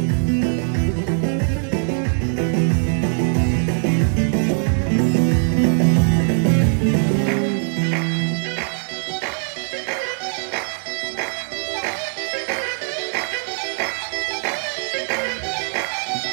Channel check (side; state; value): left; silent; 65 dB below the other